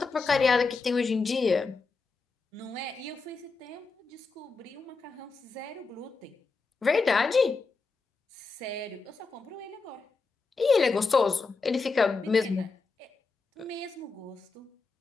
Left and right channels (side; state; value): right; quieter; 4.2 dB